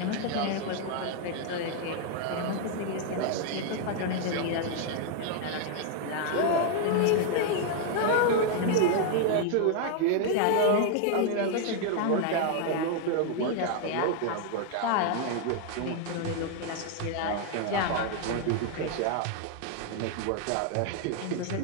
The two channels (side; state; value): both; different; correlation 0.00